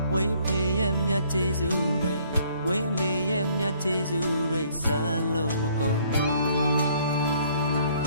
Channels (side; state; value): both; inverted; correlation -0.61